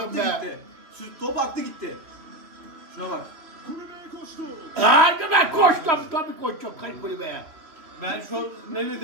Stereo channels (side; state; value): left; late; 3.0 ms